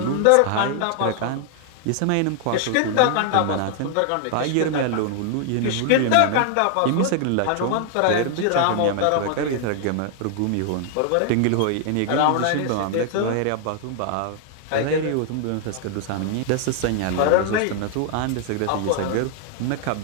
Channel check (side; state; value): both; different; correlation 0.00